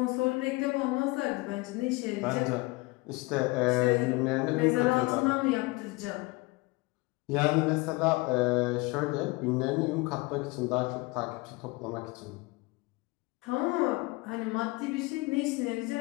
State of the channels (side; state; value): right; quieter; 23.9 dB